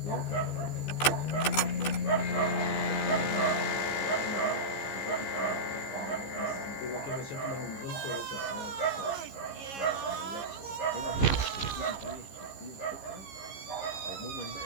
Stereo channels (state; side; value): late; right; 15 ms